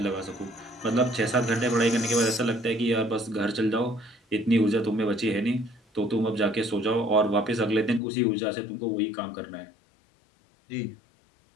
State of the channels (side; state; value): right; drops out; at 8.0 s